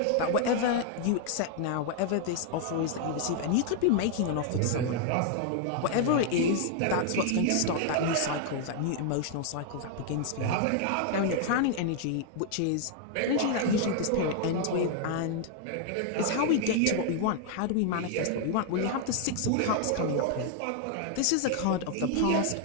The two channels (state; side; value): different; both; correlation 0.00